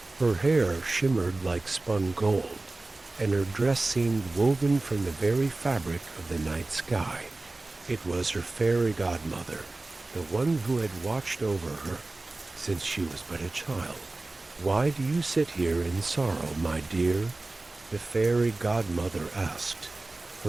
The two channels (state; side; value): quieter; left; 3.1 dB